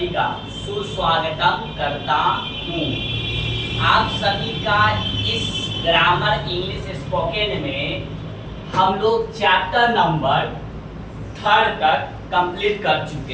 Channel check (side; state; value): both; identical; correlation 1.00